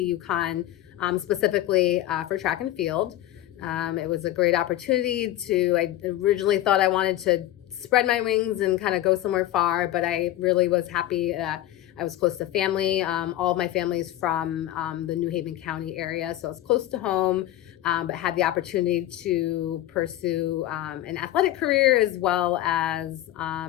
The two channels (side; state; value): right; quieter; 14.1 dB